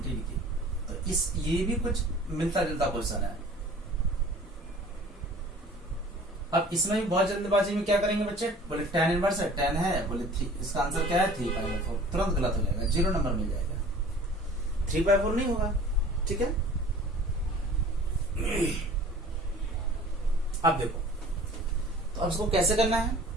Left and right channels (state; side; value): normal; both; correlation 0.47